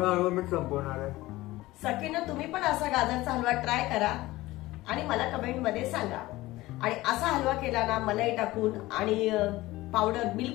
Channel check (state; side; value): quieter; right; 18.3 dB